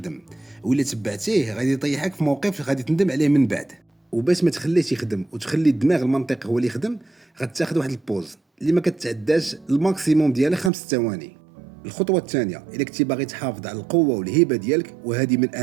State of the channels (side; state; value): left; drops out; at 10.7 s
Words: ولا تبعتيه غادي يطيحك في موقف غادي تندم عليه من بعد. وباش ما تخليش يخدم وتخلي الدماغ المنطقي هو اللي يخدم، غتاخذ واحد البوز اللي ما كتعداش الماكسيموم ديالها 5 ثواني. الخطوه الثانيه، الا كنتي باغي تحافظ على القوه والهيبه ديالك، وهذه من